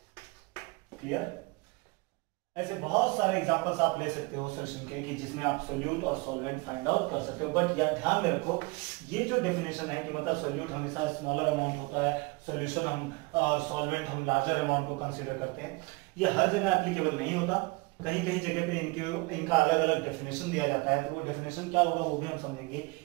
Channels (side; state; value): left; quieter; 26.3 dB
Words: क्लियर? ऐसे बहुत सारे एग्जांपल्स आप ले सकते हो सॉल्यूशन के कि जिसमें आप सोल्यूट और सॉल्वेंट फाइंड आउट कर सकते हो। बट यार ध्यान में रखो, ये जो डेफिनेशन है कि मतलब सोल्यूट हमेशा स्मॉलर अमाउंट होता है, सॉल्यूशन हम सॉल्वेंट हम लार्जर अमाउंट को कंसीडर करते हैं, ये हर जगह एप्लीकेबल नहीं होता। कहीं कहीं जगह पे इनका अलग अलग डेफिनेशन दिया जाता है, तो वो डेफिनेशन क्या होगा वो भी हम समझेंगे